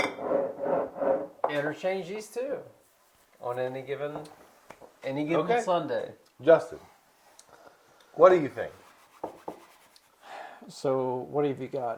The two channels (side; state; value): both; identical; correlation 1.00